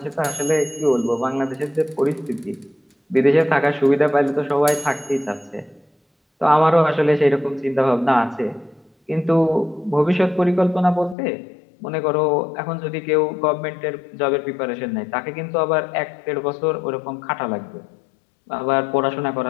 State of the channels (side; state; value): right; drops out; at 11.2 s